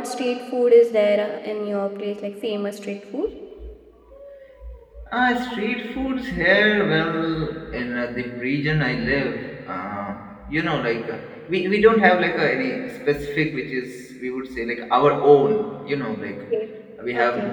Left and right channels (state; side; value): identical; both; correlation 1.00